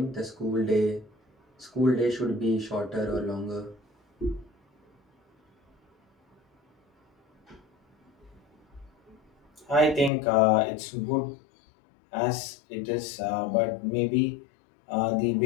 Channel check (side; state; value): right; drops out; at 10.1 s